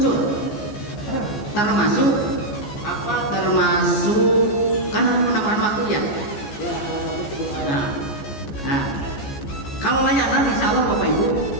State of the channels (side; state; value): right; late; 14 ms